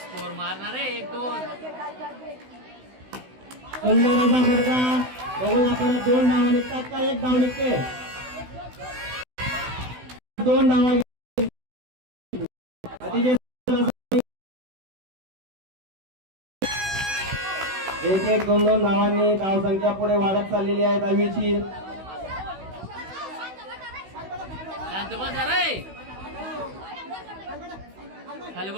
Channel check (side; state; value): left; late; 16 ms